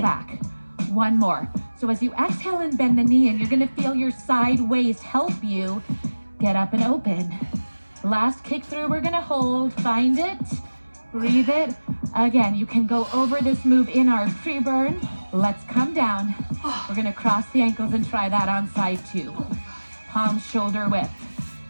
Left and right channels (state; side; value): inverted; both; correlation -1.00